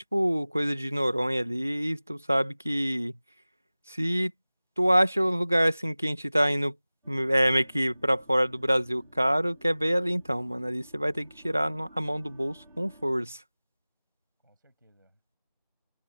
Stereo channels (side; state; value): both; inverted; correlation -0.98